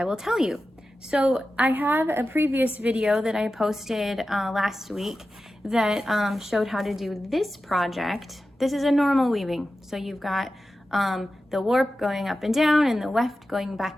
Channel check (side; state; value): both; normal; correlation 0.93